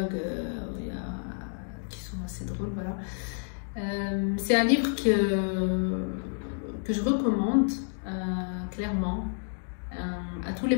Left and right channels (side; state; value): right; silent; digital silence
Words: qui sont assez drôles. Voilà. C'est un livre que je recommande clairement à tous les